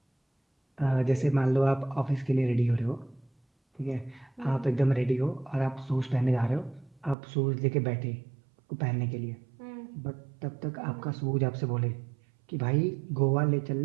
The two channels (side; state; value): left; drops out; at 7.2 s